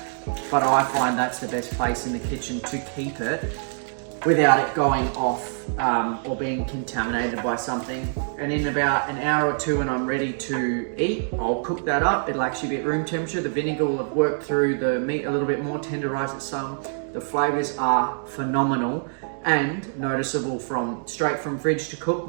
but I find that's the best place in the kitchen to keep it without it going off or being contaminated by something. And in about an hour or two when I'm ready to eat, I'll cook that up. It'll actually be at room temperature. The vinegar will have worked through the meat a little bit more, tenderized it some. The flavors are phenomenal and noticeable from straight from fridge to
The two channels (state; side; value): silent; left; digital silence